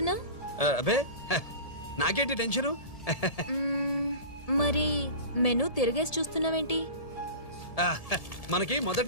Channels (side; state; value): right; late; 1.7 ms